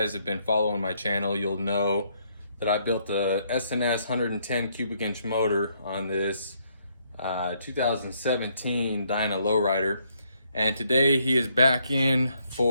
have been following my channel, you'll know that I built a SNS 110 cubic inch motor on this 2017 Dyna Lowrider, and today he is back in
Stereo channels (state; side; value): inverted; both; correlation -0.72